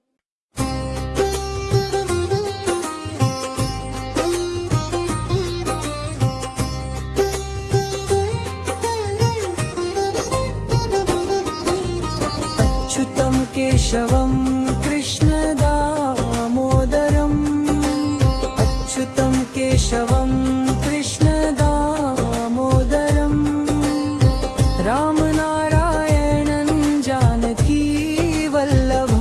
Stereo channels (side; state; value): both; identical; correlation 1.00